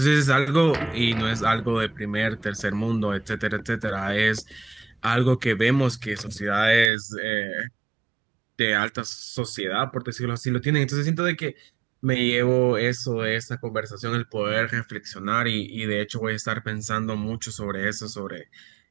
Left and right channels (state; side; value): drops out; left; at 6.9 s